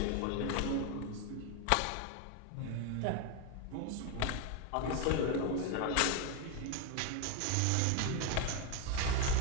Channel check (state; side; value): different; both; correlation 0.01